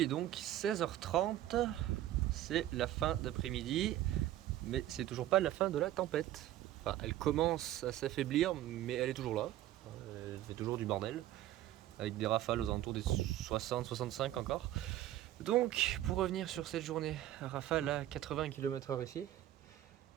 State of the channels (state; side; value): quieter; left; 13.4 dB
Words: est donc 16h30. C'est la fin d'après-midi. Mais c'est toujours pas la fin de la tempête. Enfin, elle commence à s'affaiblir, mais elle est toujours là. Elle fait toujours du bordel. Avec des rafales aux alentours des 60-65 encore. Donc, pour revenir sur cette journée, rafale à 80 km/h ici.